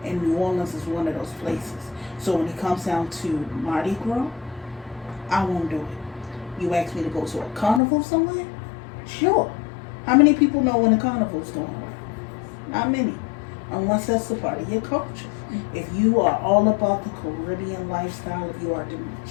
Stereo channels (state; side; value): drops out; right; at 7.8 s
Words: And New Orleans is one of those places. So when it comes down to Mardi Gras, I won't do it. You ask me to go to a carnival somewhere? Sure. How many people know when a carnival's going on? Not many. Unless that's the part of your culture. If you are all about the Caribbean lifestyle, if you are